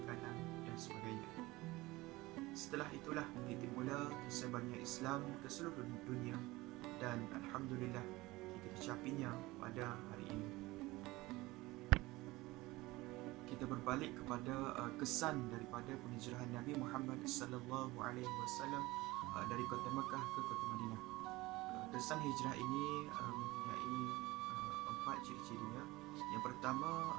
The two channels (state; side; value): quieter; left; 20.2 dB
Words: makanan dan sebagainya. Setelah itulah titik mula tersebarnya Islam ke seluruh dunia, dan alhamdulillah kita dicapinya pada hari ini. Kita berbalik kepada kesan daripada penghijrahan Nabi Muhammad sallallahu alaihi wasallam dari kota Mekah ke kota Madinah. Kesan hijrah ini mempunyai 4 ciri-cirinya. Yang pertama,